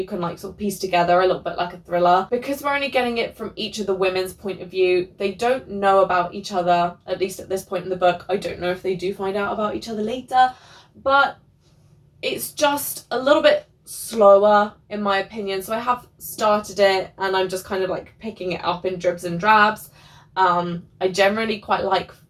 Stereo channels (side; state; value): both; identical; correlation 1.00